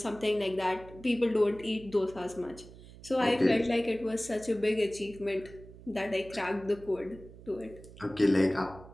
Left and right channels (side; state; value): right; noise; hum, 18 dB below the sound